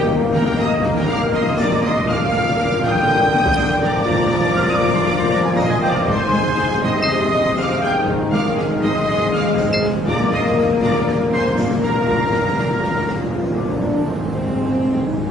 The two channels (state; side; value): normal; both; correlation 0.70